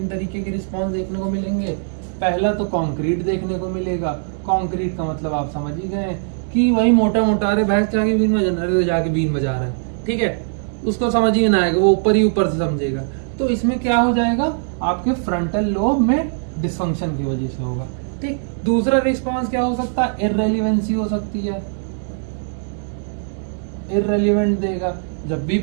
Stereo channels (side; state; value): left; silent; digital silence